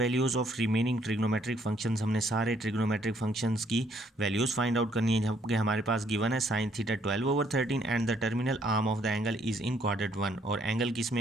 of remaining trigonometric functions. हमने सारे ट्रिग्नोमेट्रिक फंक्शंस की वैल्यूज़ फाइंड आउट करनी है, जबकि हमारे पास गिवन है sine theta 12/13 and the terminal arm of the angle is in quadrant 1। और एंगल किस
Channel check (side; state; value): both; normal; correlation 0.67